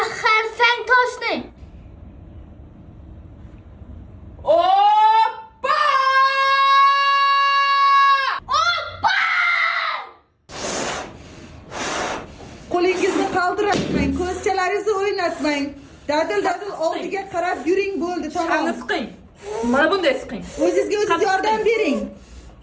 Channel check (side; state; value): both; identical; correlation 1.00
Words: xarsang toshni. Oppa! Qo'lingizni qaldiratmang, ko'zchalaringizni o'ynatmang. Dadil oldiga qarab yuring, bo'ldi, tamom. Qani siqing. Mana bunday siqing. O'zingizga o'zingiz yordam bering.